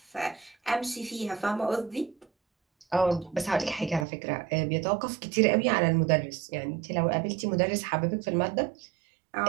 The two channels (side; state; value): left; drops out; at 4.0 s